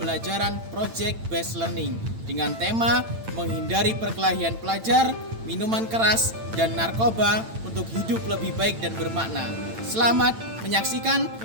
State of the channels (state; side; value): late; left; 8.9 ms